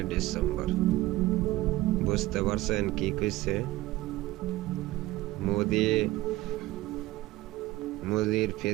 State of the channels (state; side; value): quieter; left; 17.6 dB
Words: ডিসেম্বর। বুঝতে পারছেন কি কইছে? মোদির